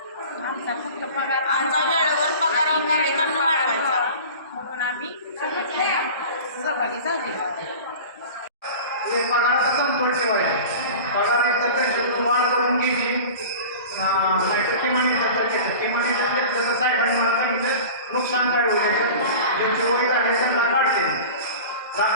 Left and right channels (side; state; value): both; inverted; correlation -0.37